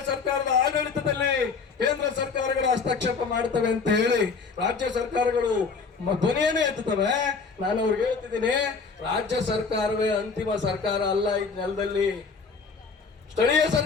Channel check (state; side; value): quieter; right; 4.9 dB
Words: ಸರ್ಕಾರದ ಆಡಳಿತದಲ್ಲಿ ಕೇಂದ್ರ ಸರ್ಕಾರಗಳು ಹಸ್ತಕ್ಷೇಪ ಮಾಡ್ತವೆ ಅಂತ ಹೇಳಿ ರಾಜ್ಯ ಸರ್ಕಾರಗಳು ಧ್ವನಿಯನ್ನೇ ಎತ್ತುತ್ತವೆ. ನಾನು ಅವ್ರಿಗೆ ಹೇಳ್ತಿದ್ದೀನಿ, ರಾಜ್ಯ ಸರ್ಕಾರವೇ ಅಂತಿಮ ಸರ್ಕಾರ ಅಲ್ಲ. ಈ ನೆಲದಲ್ಲಿ ಸ್ಥಳೀಯ